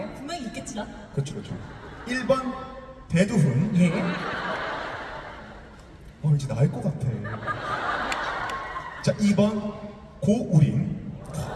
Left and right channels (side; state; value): both; identical; correlation 1.00